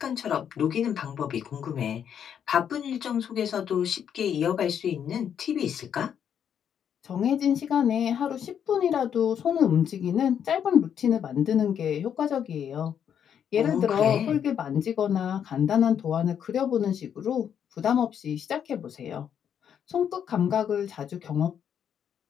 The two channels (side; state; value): right; quieter; 8.6 dB